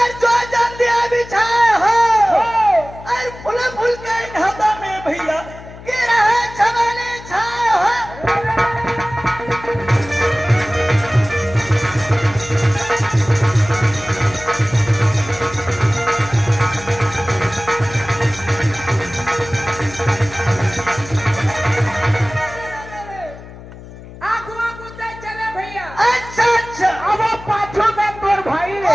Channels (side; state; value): left; noise; hum, 16 dB below the sound